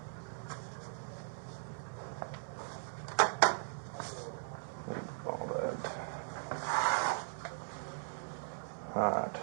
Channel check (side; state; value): left; silent; digital silence